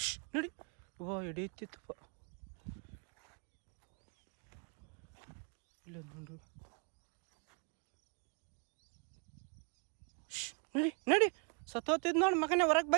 ನಡಿ. ಓ ಹಿಡಿಯುತ್ತಿತ್ತಪ್ಪ. ಇಲ್ಲ ನೋಡ್ರಿ. ನಡಿ ನಡಿ. ಸತ್ತೋತಿದ್ ನೋಡಿ ಮಗನೇ. ಹೊರಗೆ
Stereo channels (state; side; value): quieter; left; 38.4 dB